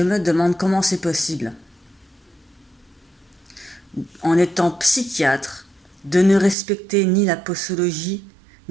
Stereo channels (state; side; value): drops out; left; at 6.6 s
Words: me demande comment c'est possible, en étant psychiatre, de ne respecter ni la posologie,